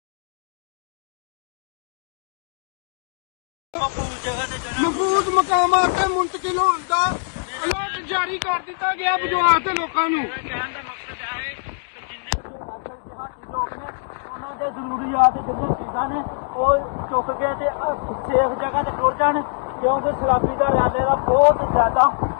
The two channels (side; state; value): right; silent; digital silence